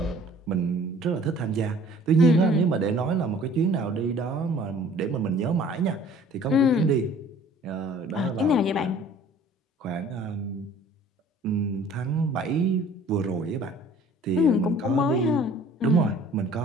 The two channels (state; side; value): normal; both; correlation 0.51